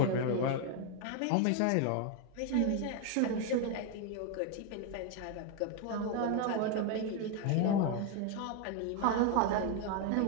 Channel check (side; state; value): both; different; correlation 0.01